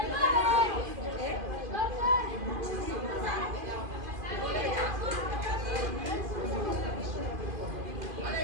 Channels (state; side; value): late; left; 2.5 ms